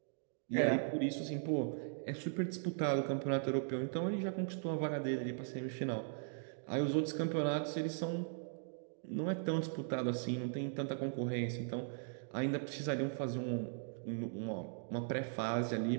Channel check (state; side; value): silent; left; digital silence